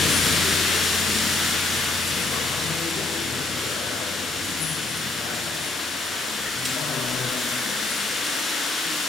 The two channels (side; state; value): right; quieter; 3.1 dB